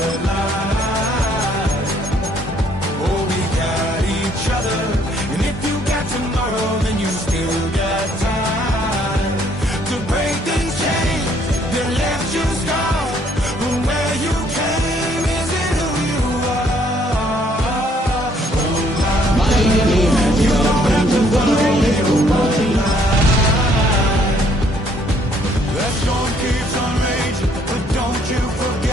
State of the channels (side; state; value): both; normal; correlation 0.65